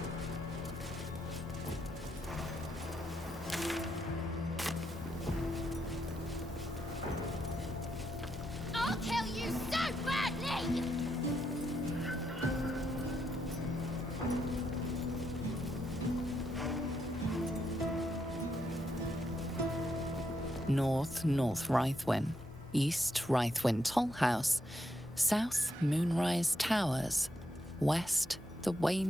I'll kill you so badly! North Rythwin, East Rythwin Tollhouse, South Moonrise Towers, West the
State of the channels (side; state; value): both; normal; correlation 0.80